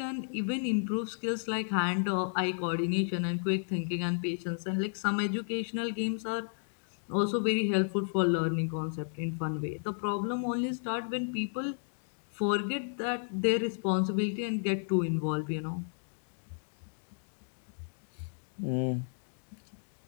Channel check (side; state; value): right; silent; digital silence